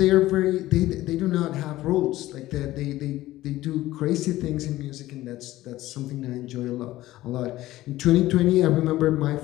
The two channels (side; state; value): right; quieter; 16.1 dB